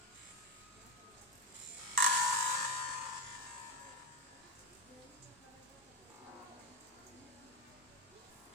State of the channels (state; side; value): normal; both; correlation 0.11